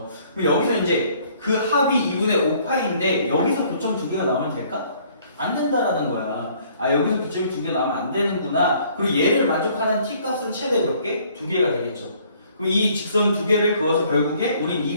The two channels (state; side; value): inverted; both; correlation -0.60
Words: 그럼 여기서 이제 그 합이 2분의 5파이인데 여기서 교점 두 개가 나오면 될까? 안 된다라는 거야. 아, 여기서 교점이 두 개 나오면 안 되는구나. 그리고 얘를 만족하는 t 값은 최대 몇 개? 두 개가 되겠죠. 그럼 이 직선 두 개를 그어서 결국에 우린